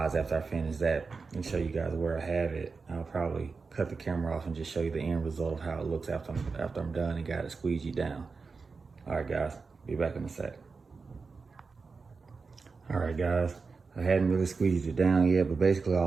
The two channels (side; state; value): left; quieter; 4.6 dB